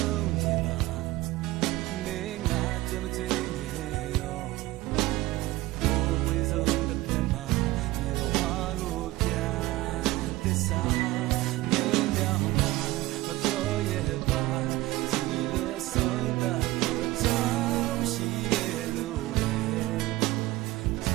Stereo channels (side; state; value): left; quieter; 18.4 dB